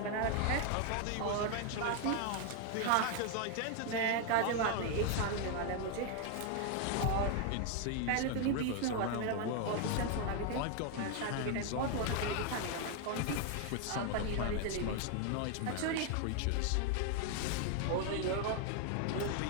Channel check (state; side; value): different; both; correlation 0.01